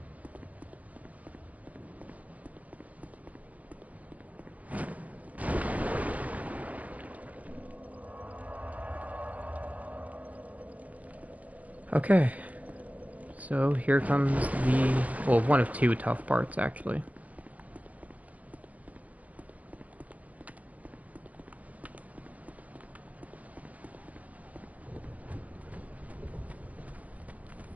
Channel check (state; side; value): late; left; 0.071 ms